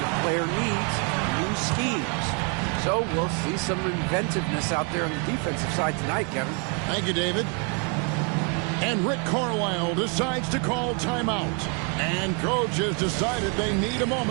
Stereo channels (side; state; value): left; quieter; 36.5 dB